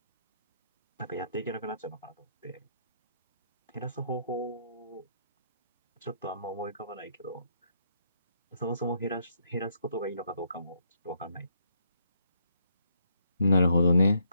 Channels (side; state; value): both; inverted; correlation -0.73